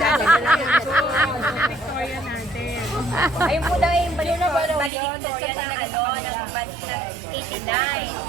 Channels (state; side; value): drops out; left; at 4.9 s